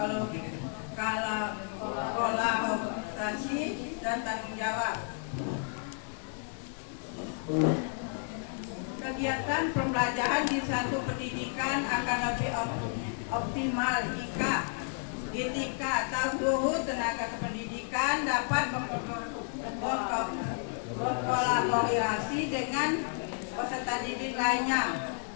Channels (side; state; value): right; silent; 57 dB below the other